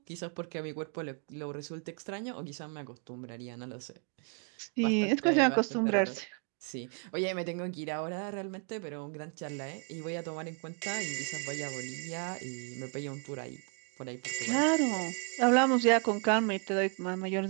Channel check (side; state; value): left; quieter; 37.8 dB